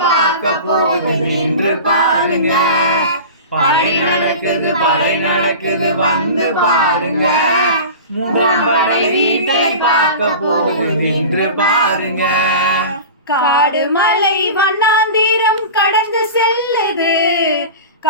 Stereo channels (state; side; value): inverted; both; correlation -0.33